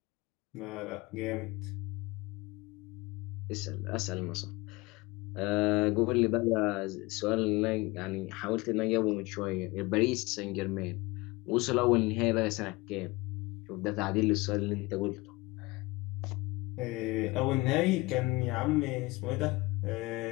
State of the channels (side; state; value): right; quieter; 22.7 dB